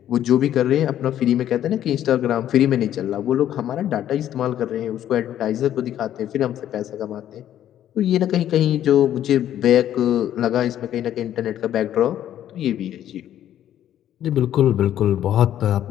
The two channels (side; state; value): right; quieter; 11.3 dB